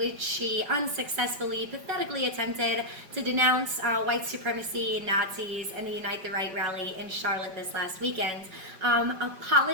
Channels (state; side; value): late; left; 5.3 ms